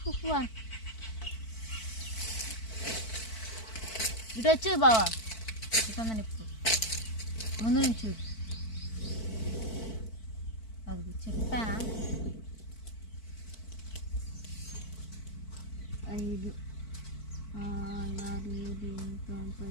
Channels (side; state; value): right; late; 4.5 ms